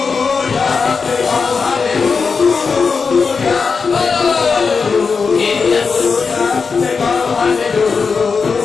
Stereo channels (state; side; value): quieter; right; 5.1 dB